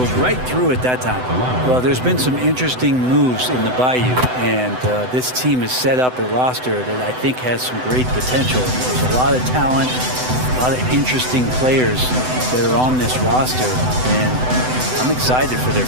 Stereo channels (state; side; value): late; left; 7.9 ms